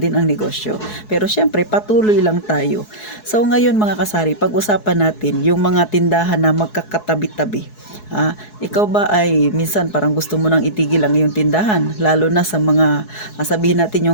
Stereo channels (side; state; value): right; late; 4.7 ms